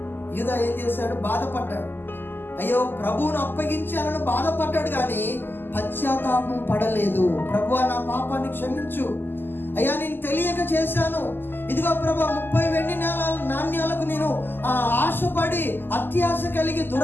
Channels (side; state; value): right; late; 0.096 ms